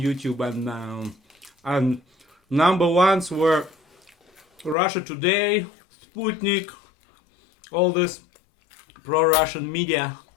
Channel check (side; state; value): right; drops out; at 4.8 s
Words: and number ones were Russia Today, Sputnik, all this pro-Russian media